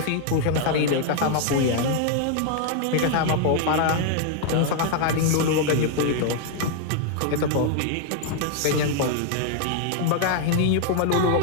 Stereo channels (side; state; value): both; different; correlation 0.00